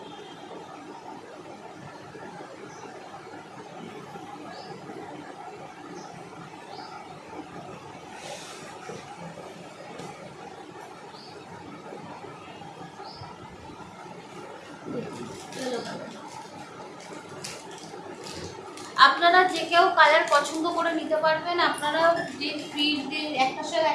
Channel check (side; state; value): both; identical; correlation 1.00